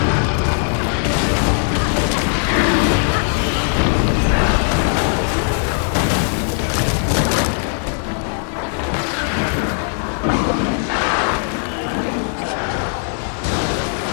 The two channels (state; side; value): silent; right; 57 dB below the other